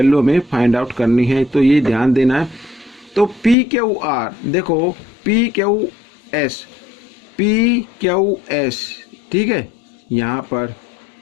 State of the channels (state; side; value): drops out; right; at 3.6 s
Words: हमें फाइंड आउट करनी है, तो ये ध्यान देना है। तो पी क्यू आर, देखो पी क्यू एस, ठीक है, यहाँ पर